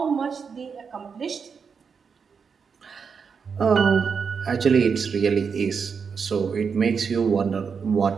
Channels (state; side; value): quieter; left; 6.0 dB